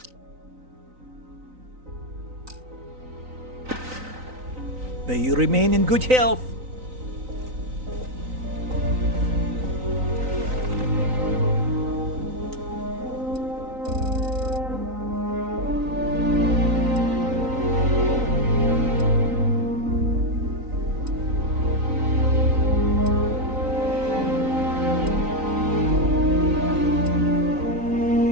May you remain in good health.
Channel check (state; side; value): late; left; 3.9 ms